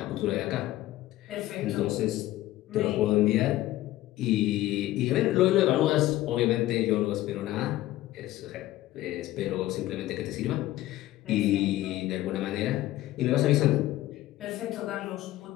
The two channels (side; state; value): right; quieter; 15.7 dB